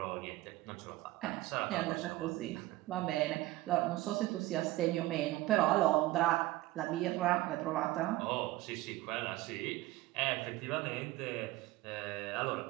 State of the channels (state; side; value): quieter; left; 17.8 dB